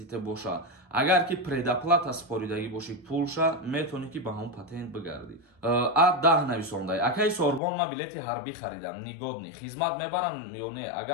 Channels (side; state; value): right; drops out; at 7.6 s